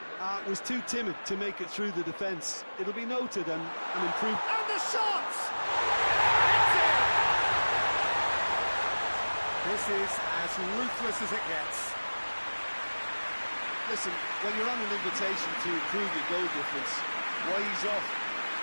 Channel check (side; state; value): both; inverted; correlation -1.00